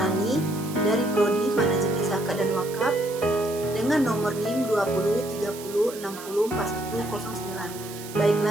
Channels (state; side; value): noise; right; hiss, 14 dB below the sound